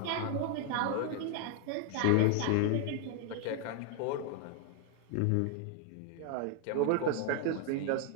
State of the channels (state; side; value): different; both; correlation 0.00